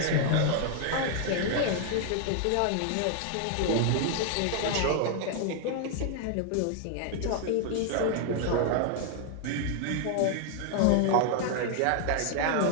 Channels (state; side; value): different; both; correlation 0.00